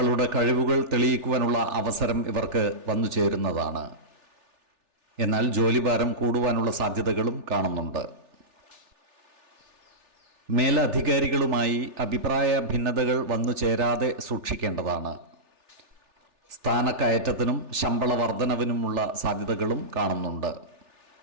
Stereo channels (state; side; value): late; left; 3.4 ms